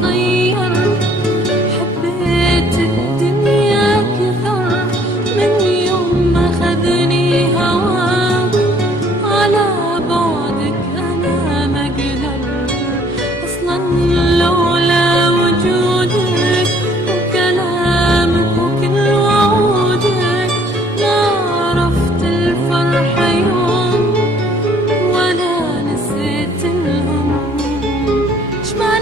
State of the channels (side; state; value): both; normal; correlation 0.59